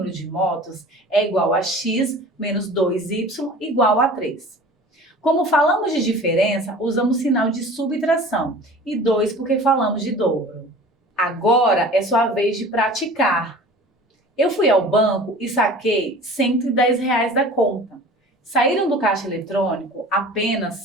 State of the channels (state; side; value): normal; both; correlation 0.42